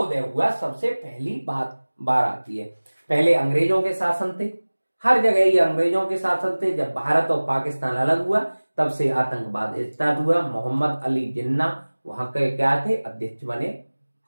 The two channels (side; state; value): both; inverted; correlation -1.00